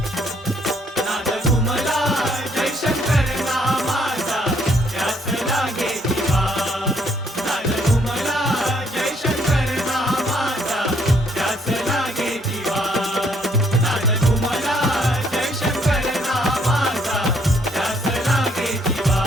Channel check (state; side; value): normal; both; correlation 0.68